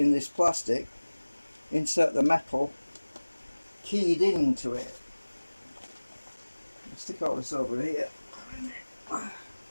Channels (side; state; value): both; inverted; correlation -1.00